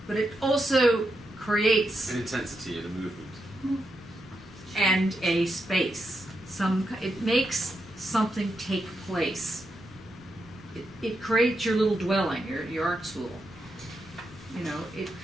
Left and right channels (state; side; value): normal; both; correlation 0.84